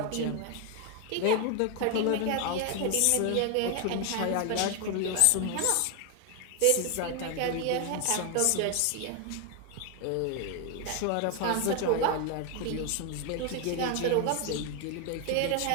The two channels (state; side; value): different; both; correlation 0.01